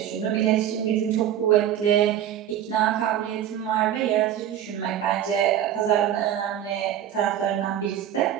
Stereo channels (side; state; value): left; quieter; 10.7 dB